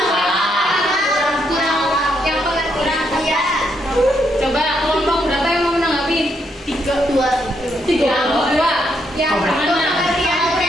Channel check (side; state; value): both; normal; correlation 0.76